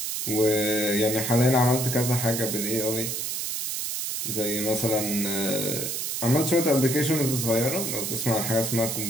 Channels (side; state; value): right; noise; hiss, 3 dB below the sound